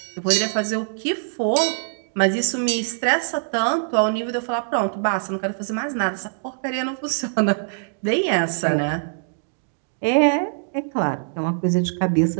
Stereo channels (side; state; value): left; silent; digital silence